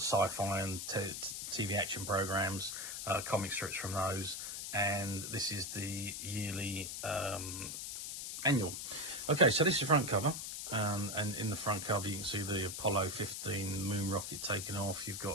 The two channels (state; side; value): noise; left; hiss, 6 dB below the sound